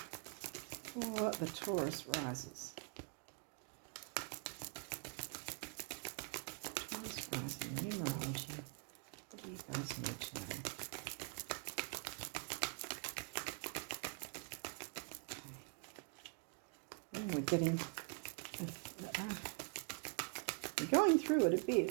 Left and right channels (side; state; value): left; quieter; 35.4 dB